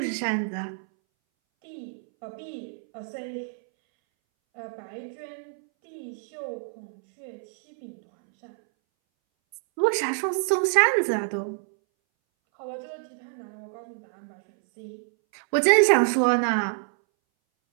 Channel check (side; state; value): left; silent; 60 dB below the other